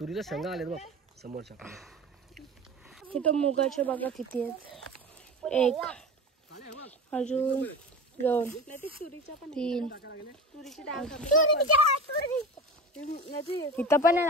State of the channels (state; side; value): normal; both; correlation 0.30